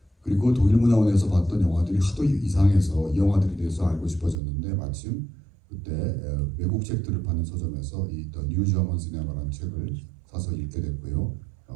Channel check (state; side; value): drops out; left; at 4.4 s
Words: 그리고 독일문화원에서 봤던 영화들이 하도 이상해서 이 영화들에 대해서 알고 싶어졌는데 마침 그때 외국 책들을 파는 서점에서 이 The New German Cinema라는 책을 사서 읽게 됐고요.